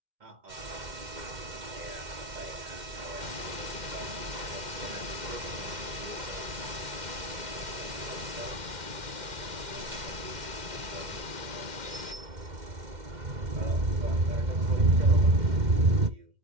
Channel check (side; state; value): left; late; 2.1 ms